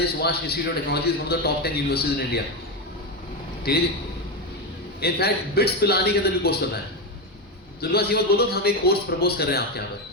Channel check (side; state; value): both; normal; correlation 0.12